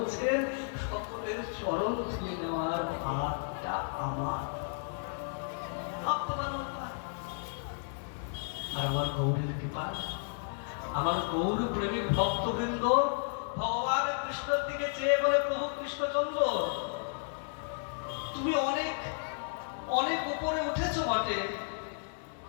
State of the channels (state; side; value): silent; right; digital silence